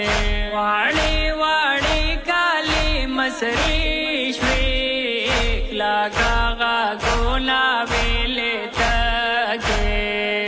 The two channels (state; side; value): identical; both; correlation 1.00